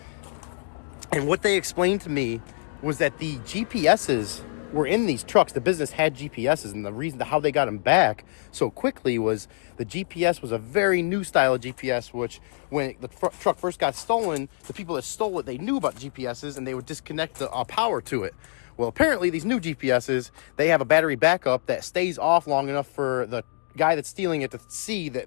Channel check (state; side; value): silent; right; digital silence